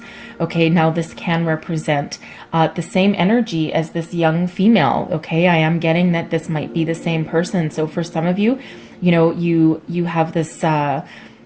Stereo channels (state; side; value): identical; both; correlation 1.00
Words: okay, now this can represent the same energy as this young female, okay? I am getting that this might be the same person. So for some of you, you have this,